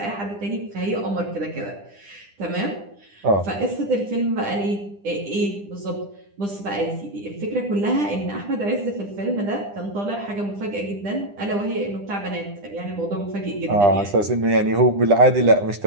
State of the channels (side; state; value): left; late; 9.9 ms